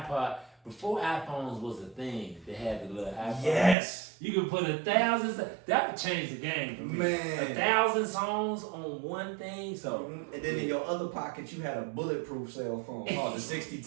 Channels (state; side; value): drops out; left; at 3.8 s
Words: before iPhones was a thing, they had the little iPhone. Yes. You could put 1,000. That would change the game for me. Man. 1,000 songs on one thing. So. And then in your other pocket, you had a bulletproof cell phone called the